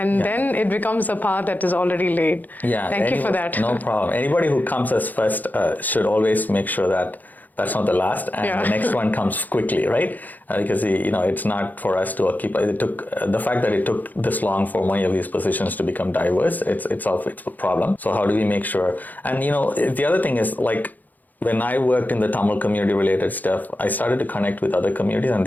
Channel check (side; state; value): right; late; 0.083 ms